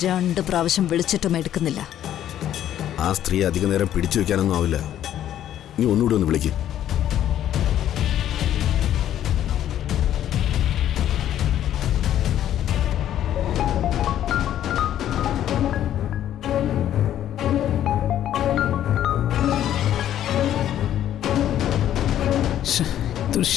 2 പ്രാവശ്യം വിളിച്ചിട്ടും എടുക്കുന്നില്ല. ആ സ്ത്രീ അധിക നേരം പിടിച്ചു വെക്കാനൊന്നും ആവില്ല. നീ ഒന്നുകൂടി ഒന്ന് വിളിക്ക്. ഇതൊരു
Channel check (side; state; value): right; quieter; 11.4 dB